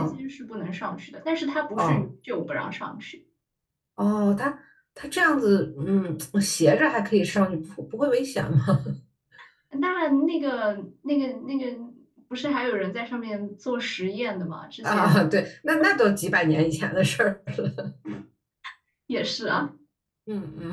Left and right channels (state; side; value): identical; both; correlation 1.00